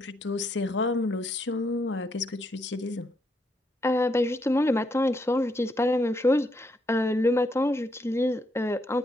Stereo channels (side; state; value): both; normal; correlation 0.76